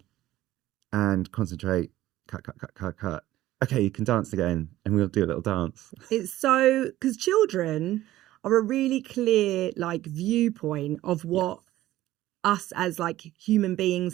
and concentrate. Cut, cut, cut, cut, cut. Okay, you can dance again, and we'll do a little dance. It's so, because children are a really clear like viewpoint of what us as like human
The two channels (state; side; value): quieter; left; 15.0 dB